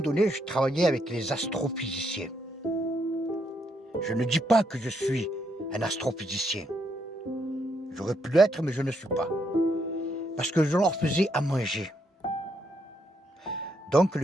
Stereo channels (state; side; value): normal; both; correlation 0.76